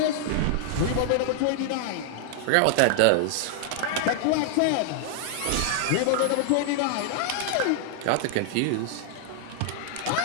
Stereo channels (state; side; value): different; both; correlation 0.00